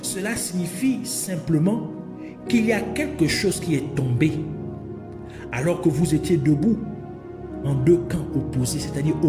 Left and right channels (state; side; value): identical; both; correlation 1.00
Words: cela signifie simplement qu'il y a quelque chose qui est tombé alors que vous étiez debout en deux camps opposés, c'est-à-dire